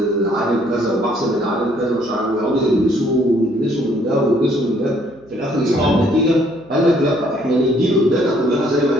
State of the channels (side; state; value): right; noise; hum, 27 dB below the sound